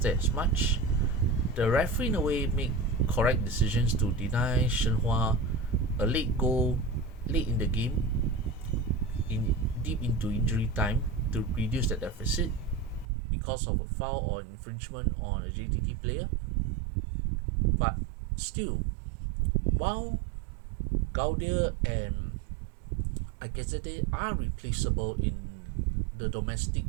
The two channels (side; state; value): left; drops out; at 13.1 s